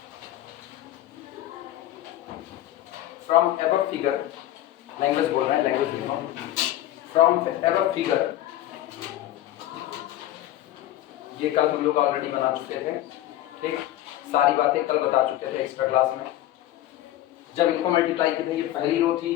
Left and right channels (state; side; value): quieter; right; 13.9 dB